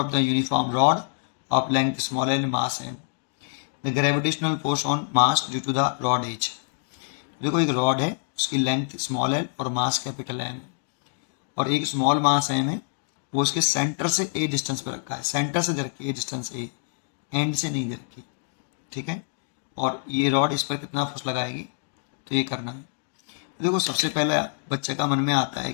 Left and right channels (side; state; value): right; silent; 60 dB below the other